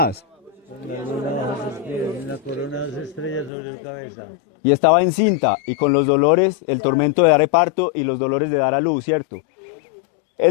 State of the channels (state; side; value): drops out; right; at 3.5 s